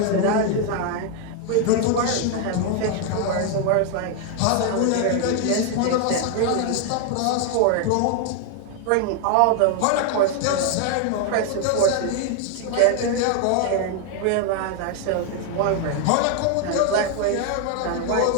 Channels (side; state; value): both; different; correlation 0.00